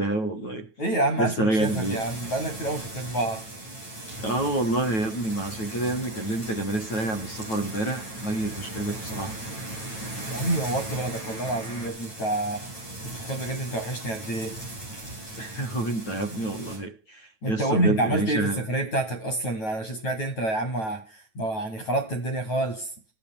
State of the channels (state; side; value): late; right; 9.2 ms